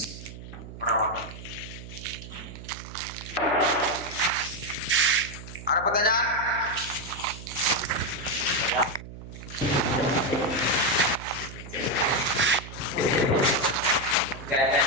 perawatan. Ada pertanyaan?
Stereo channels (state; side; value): noise; right; hum, 13 dB below the sound